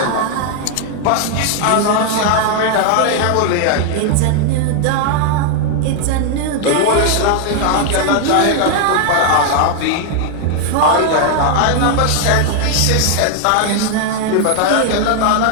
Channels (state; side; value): different; both; correlation 0.00